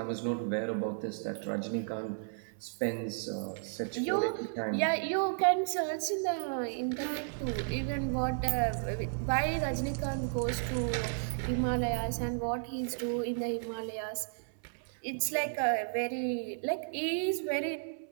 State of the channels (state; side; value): silent; left; 55 dB below the other